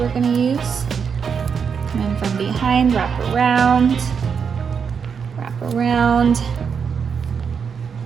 gonna use. Come in from behind, wrap around,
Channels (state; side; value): quieter; left; 6.4 dB